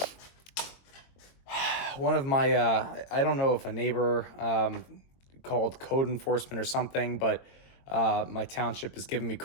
of my, I don't know if a neighbor called code enforcement or something, but my township is giving me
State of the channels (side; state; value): right; late; 22 ms